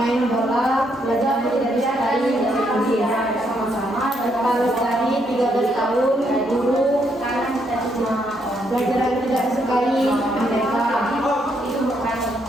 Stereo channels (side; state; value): both; normal; correlation 0.75